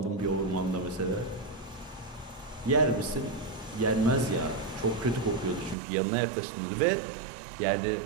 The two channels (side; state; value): left; drops out; at 5.8 s